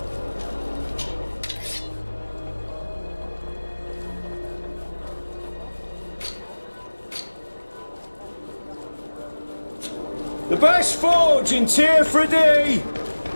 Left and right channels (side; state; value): both; inverted; correlation -1.00